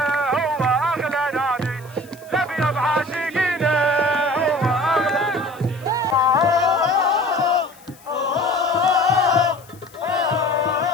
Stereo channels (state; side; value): noise; left; hiss, 25 dB below the sound